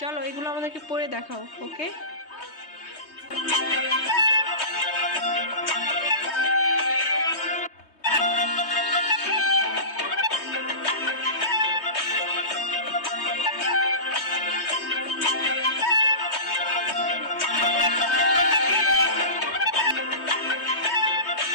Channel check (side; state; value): right; late; 3.2 ms